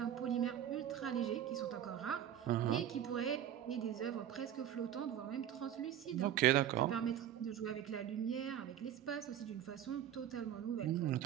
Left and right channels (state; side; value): quieter; left; 10.5 dB